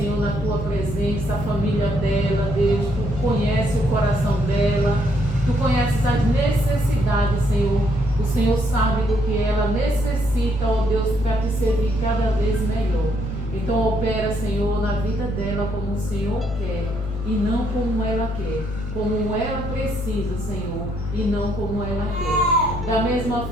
na tua presença, a família dela, Deus, tu conhece o coração dela, tu conheces as necessidades, Senhor. O Senhor sabe do que ela necessita, ó Deus, para te servir cada vez melhor. Então opera, Senhor, na vida dela como o Senhor quer e não como ela quer, como ela precisa, Senhor, e não como ela quer. Da mesma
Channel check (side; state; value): left; noise; hum, 6 dB below the sound